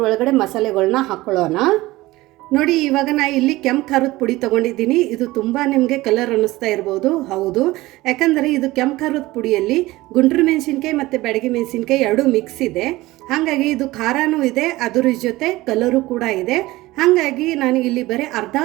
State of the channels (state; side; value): quieter; left; 18.8 dB